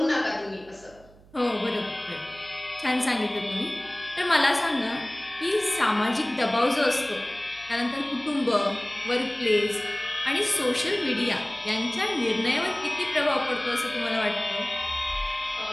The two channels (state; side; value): noise; right; hum, 25 dB below the sound